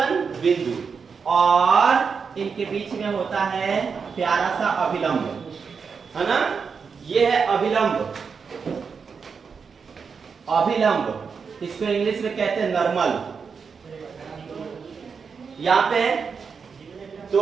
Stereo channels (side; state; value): left; quieter; 5.7 dB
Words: बिंदु, और इनके बीच में होता है प्यारा सा अभिलंब, है ना। ये है अभिलंब। इसको इंग्लिश में कहते हैं नॉर्मल। यहाँ पे